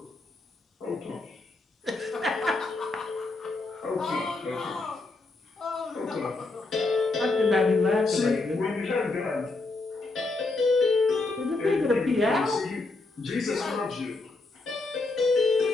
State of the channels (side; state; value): right; quieter; 3.4 dB